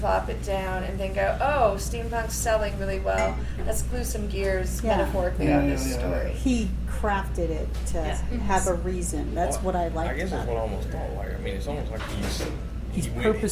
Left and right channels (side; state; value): both; identical; correlation 1.00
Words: it down, and then go, oh, steampunk's selling really well. Let's glue some gears metaphorically on this story. He crafted it to have a reason. That's what I like. I guess that's about what I it. almost don't like. I mean, it's almost like He's he went,